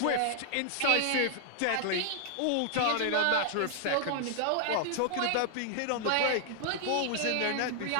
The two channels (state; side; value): different; both; correlation 0.00